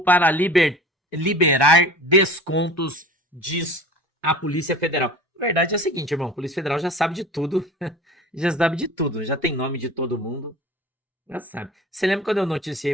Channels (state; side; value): normal; both; correlation 0.39